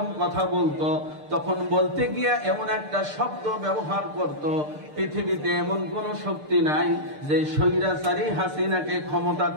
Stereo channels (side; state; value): left; late; 6.7 ms